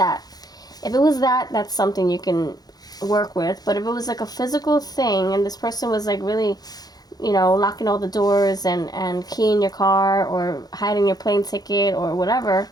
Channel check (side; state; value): right; late; 0.19 ms